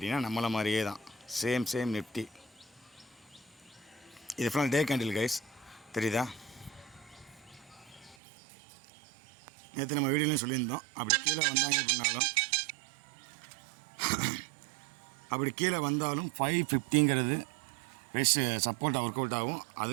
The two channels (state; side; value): drops out; left; at 8.2 s